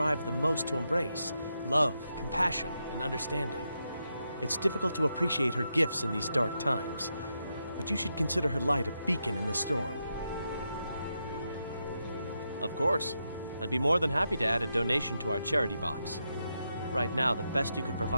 the most to embrace. love, compassion, and understanding. It's difficult to appreciate her gifts in these dark times, but you should consider her light a beacon in the storm. Of course. I'd be more than happy to add a donation to our charity box. Right now, the best you could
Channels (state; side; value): inverted; both; correlation -0.85